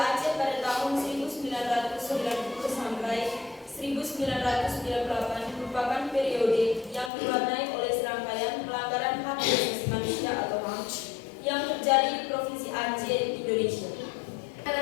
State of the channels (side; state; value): right; drops out; at 7.1 s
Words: pada tahun 1990 sampai 1998 merupakan periode yang diwarnai oleh serangkaian pelanggaran hak asasi manusia atau HAM yang terjadi di Provinsi Aceh, Indonesia.